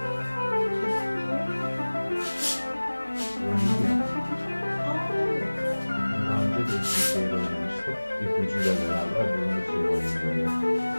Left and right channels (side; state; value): both; inverted; correlation -1.00